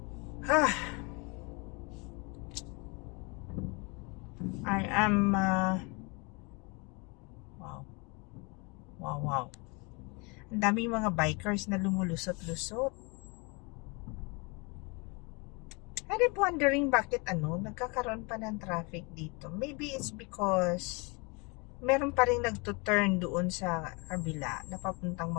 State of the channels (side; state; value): right; quieter; 29.9 dB